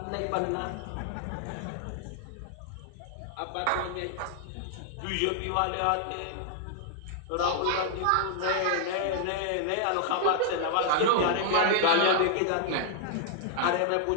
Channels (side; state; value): both; different; correlation -0.01